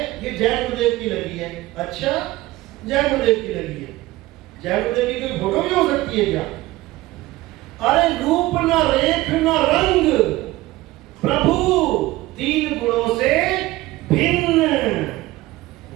ये जय गुरुदेव की लगी है। अच्छा, जय गुरुदेव की लगी है। जय गुरुदेव की कोई फोटो भी हो सकती है क्या? अरे रूप न रेख न रंग, प्रभु तीन गुणों से भिन्न।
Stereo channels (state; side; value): quieter; left; 18.2 dB